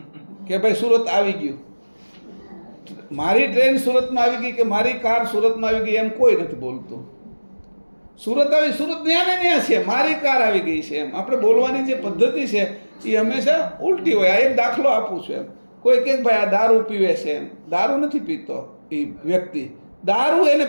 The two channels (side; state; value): both; inverted; correlation -1.00